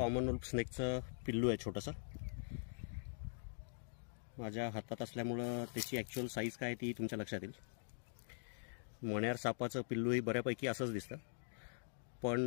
wolf स्नेकचं पिल्लू आहे छोटंसं. माझ्या हातात असल्यामुळं त्याची ॲक्च्युअल साईज काय ती तुमच्या लक्षात येईल. मण्यार सापाचं पिल्लूही बऱ्यापैकी असंच दिसतं,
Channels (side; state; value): right; silent; digital silence